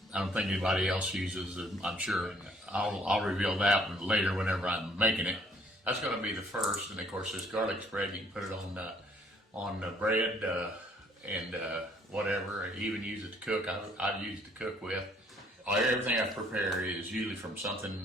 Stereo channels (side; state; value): both; normal; correlation 0.63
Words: I don't think anybody else uses. I'm sure I'll reveal that later whenever I'm making it. That's going to be the first, and of course this garlic spread, you can put it on bread and whatever. Even use it to cook. I've used to cook with. Everything I prepare is usually from